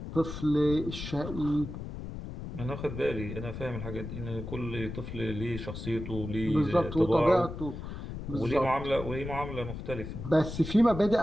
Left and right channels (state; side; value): noise; left; rumble, 8 dB below the sound